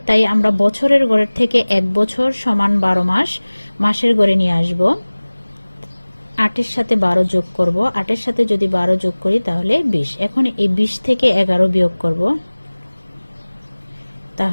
তাই আমরা বছরের গড়ের থেকে 1 বছর সমান 12 মাস মাসের গড়ে নিয়ে আসব। 8 এর সাথে 12 যোগ করব, 8 এর সাথে যদি 12 যোগ করি তাহলে 20। এখন এই 20 থেকে 11 বিয়োগ করব,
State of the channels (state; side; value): inverted; both; correlation -1.00